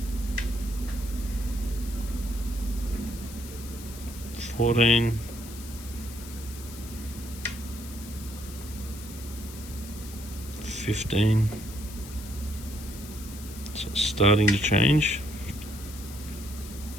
14. 15. So it's starting to change.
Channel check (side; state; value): left; noise; hiss, 15 dB below the sound